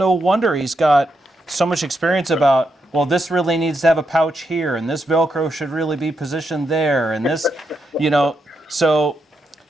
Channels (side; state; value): both; normal; correlation 0.82